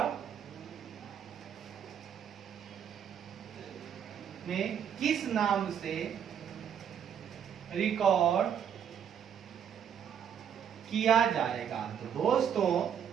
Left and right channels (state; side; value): quieter; left; 8.4 dB